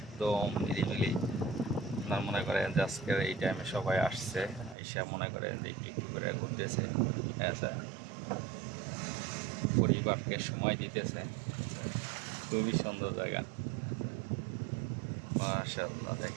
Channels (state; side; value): drops out; left; at 4.8 s